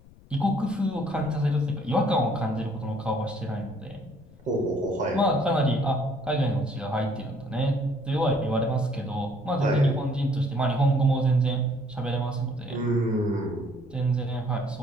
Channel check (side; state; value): left; noise; rumble, 24 dB below the sound